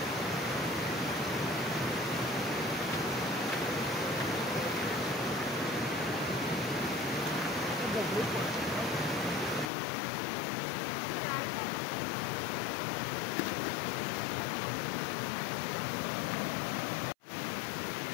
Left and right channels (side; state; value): right; drops out; at 9.7 s